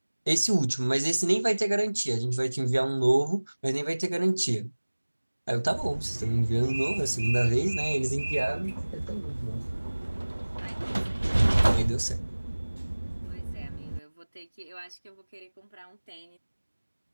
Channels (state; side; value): inverted; both; correlation -1.00